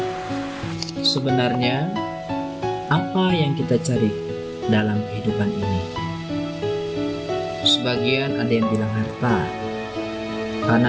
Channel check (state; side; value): identical; both; correlation 1.00